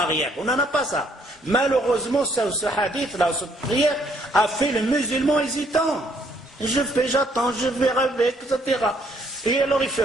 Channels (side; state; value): both; normal; correlation 0.67